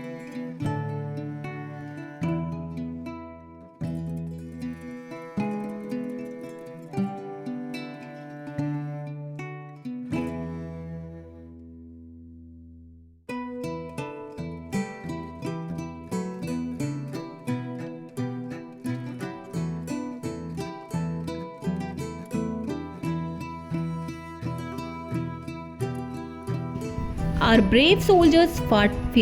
Our brave soldiers fought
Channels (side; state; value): both; identical; correlation 1.00